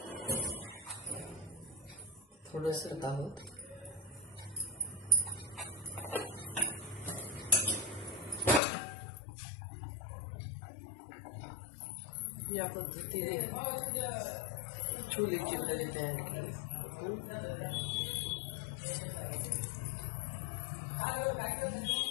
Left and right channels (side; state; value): right; drops out; at 8.6 s